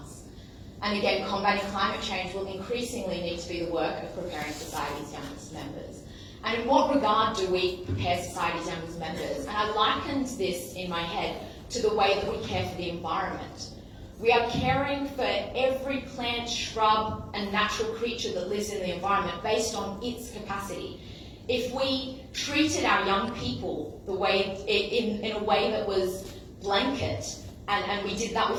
And again, combating climate change will increasingly need to be the work of preparing society's youngest members. And in what regard do we prepare society's youngest members? And I likened this in my head to the way that we care for the environment. We are caring for every plant, shrub, and natural creature that lives in the environment based on its capacity. If we treated our young people the way in a way that was blanket, and we did that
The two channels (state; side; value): identical; both; correlation 1.00